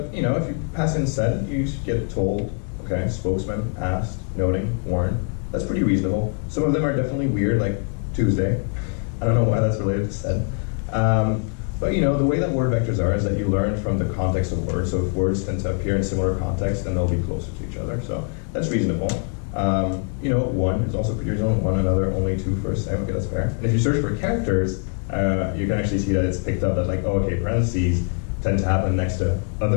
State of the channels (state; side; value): quieter; right; 39.7 dB